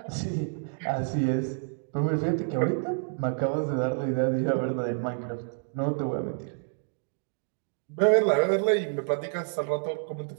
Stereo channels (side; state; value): left; silent; digital silence